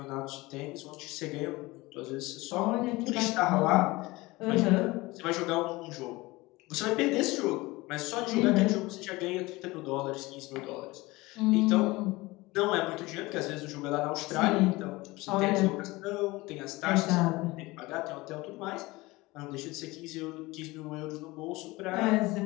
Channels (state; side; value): quieter; right; 21.3 dB